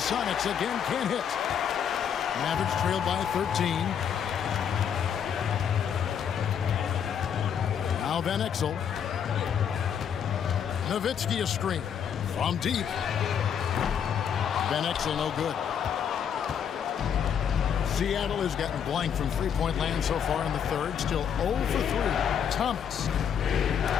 again can't hit. Mavericks trailed by 13. Now Van Exel. Nowitzki a screen from deep. Van Exel no good. Seattle has gotten blank from three-point land so far in the third. Still 0 for 3. Thomas.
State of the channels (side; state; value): right; quieter; 8.1 dB